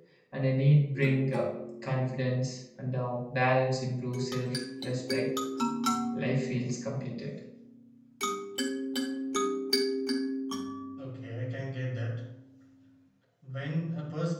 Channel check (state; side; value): identical; both; correlation 1.00